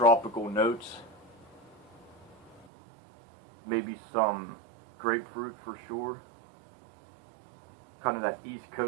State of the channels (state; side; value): drops out; left; at 2.7 s